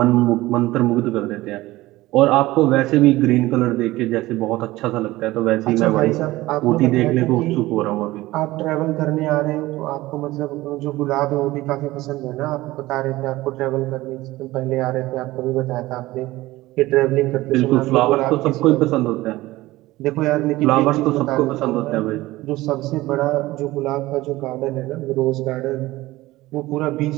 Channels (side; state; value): left; quieter; 18.1 dB